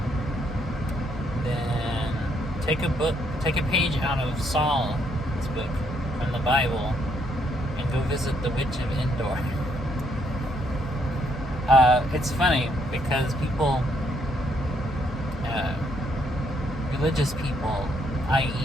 then take a page out of Saul's book from the Bible and go visit the Witch of Endor. It's funny because people, religious people,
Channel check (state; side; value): normal; both; correlation 0.72